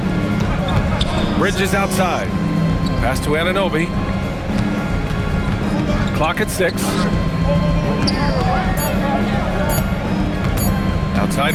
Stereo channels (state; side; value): identical; both; correlation 1.00